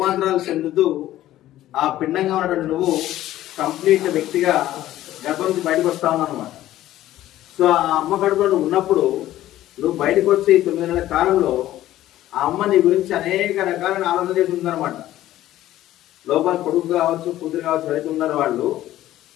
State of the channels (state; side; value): quieter; right; 14.1 dB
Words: చెందుతూ ఆ పిండంగా ఉన్నటువంటి నువ్వు కంప్లీట్ వ్యక్తిగా గర్భం నుంచి బయటకు వస్తా ఉన్నావు అనమాట. సో ఆ అమ్మ గర్భంలో ఉన్నప్పుడు నువ్వు బయటకు వచ్చి 9 నెలల కాలంలో ఆ అమ్మ నీ గురించి అనేక రకాలైన ఆలోచన చేసి ఉందన్నమాట. లోపల కొడుకు కావచ్చు, కూతురు కావచ్చు, ఎవరైతే ఉన్నారో వాళ్ళు